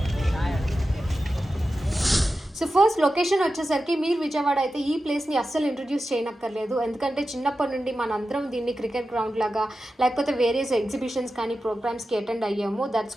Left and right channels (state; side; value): normal; both; correlation 0.92